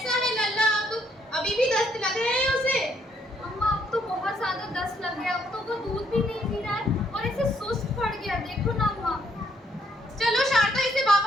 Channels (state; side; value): normal; both; correlation 0.70